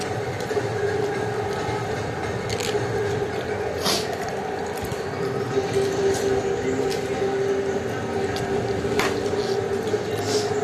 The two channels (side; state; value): both; identical; correlation 1.00